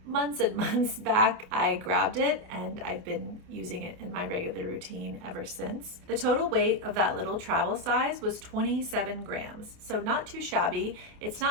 months and months back, I grabbed it, and I've been using it in my regular routine ever since. The total weight of that little travel size was 27 grams, so not too shabby. It's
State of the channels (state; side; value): late; left; 28 ms